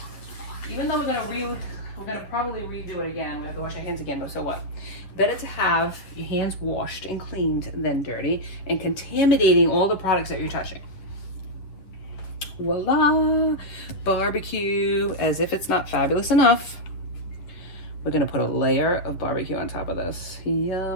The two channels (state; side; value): late; right; 10 ms